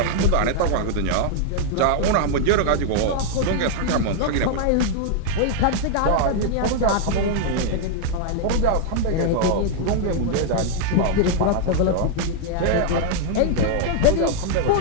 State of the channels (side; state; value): both; different; correlation 0.00